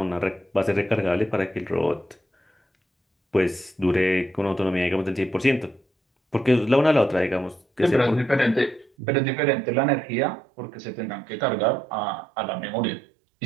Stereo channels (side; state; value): left; drops out; at 8.9 s